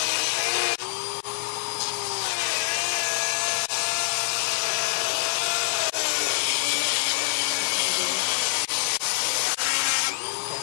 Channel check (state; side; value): silent; right; digital silence